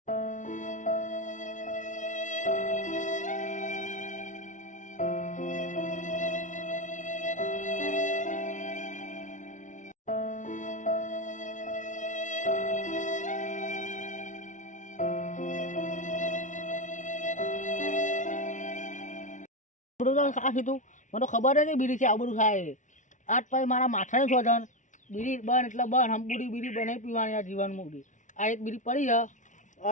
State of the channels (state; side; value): late; right; 0.36 ms